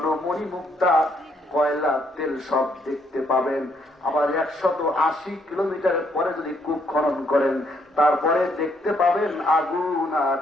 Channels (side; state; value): both; normal; correlation 0.71